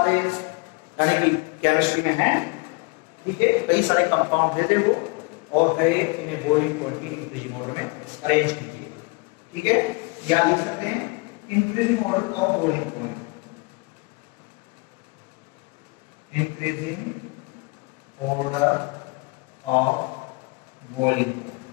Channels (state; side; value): quieter; right; 28.7 dB